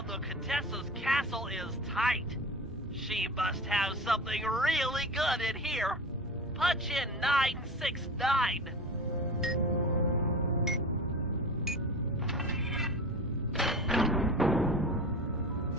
the Contessa's castle is tight. She must have something really good in here. Punch in 969.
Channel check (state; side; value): normal; both; correlation 0.32